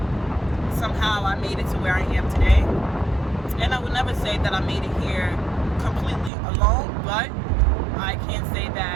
somehow I made it to where I am today. And I would never say that I made it here completely alone, but I can say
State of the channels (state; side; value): drops out; left; at 6.3 s